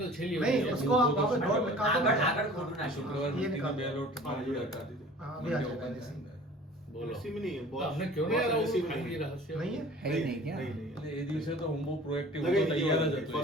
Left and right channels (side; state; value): both; normal; correlation 0.45